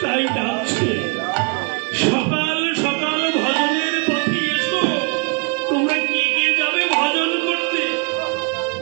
তাই ডাকছে, সকাল সকাল ভজনের পথে এসো। তোমরা কে কে যাবে ভজন করতে?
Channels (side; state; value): left; quieter; 35.2 dB